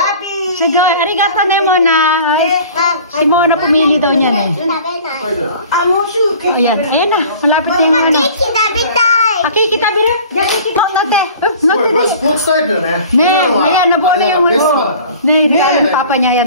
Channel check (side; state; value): both; inverted; correlation -0.45